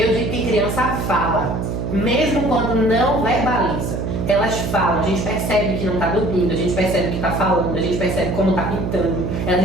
digo que criança fala, mesmo quando não verbaliza. Elas falam, a gente percebe que não está dormindo, a gente percebe que está falando, a gente percebe como está pintando, a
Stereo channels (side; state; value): right; noise; hum, 2 dB below the sound